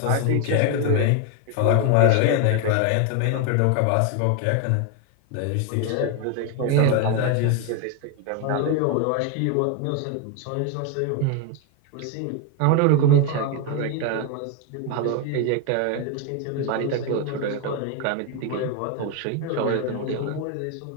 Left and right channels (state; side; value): different; both; correlation 0.01